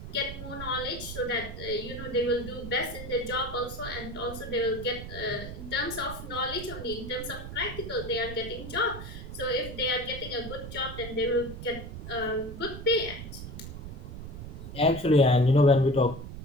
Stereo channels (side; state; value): right; noise; rumble, 10 dB below the sound